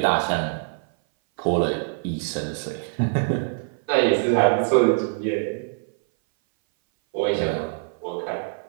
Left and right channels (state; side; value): silent; left; 59 dB below the other